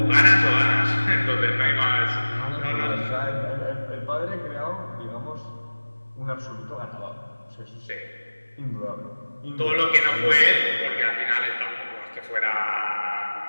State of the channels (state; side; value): inverted; both; correlation -1.00